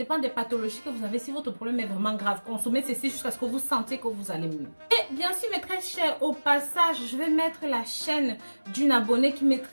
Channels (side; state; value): both; inverted; correlation -1.00